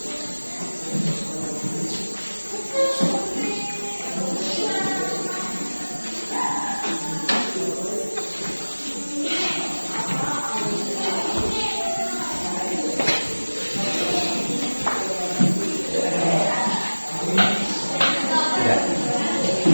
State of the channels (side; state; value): both; inverted; correlation -1.00